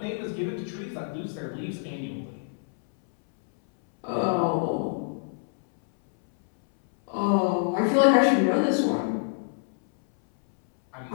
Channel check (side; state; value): right; silent; 61 dB below the other